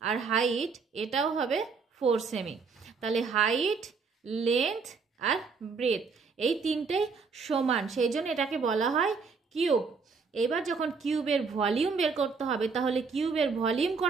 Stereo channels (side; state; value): left; quieter; 5.0 dB